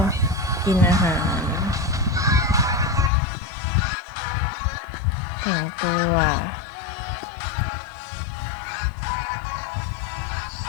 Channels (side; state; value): right; drops out; at 3.1 s